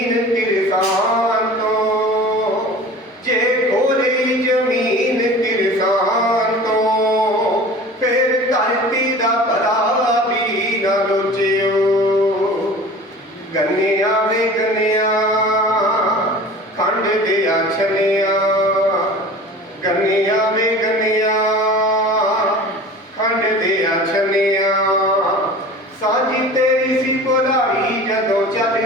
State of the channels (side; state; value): both; normal; correlation 0.40